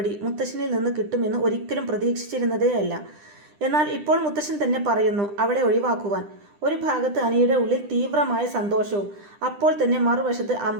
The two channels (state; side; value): late; left; 9.9 ms